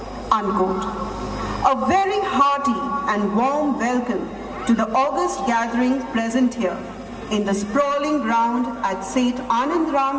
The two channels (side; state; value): both; identical; correlation 1.00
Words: Unquote. A very hearty and warm welcome to the august gathering present here in the sprawling ground at Seth